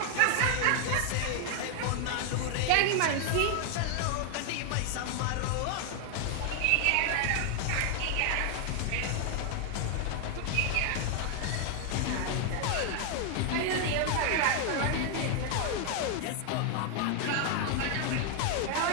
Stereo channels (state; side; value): different; both; correlation 0.00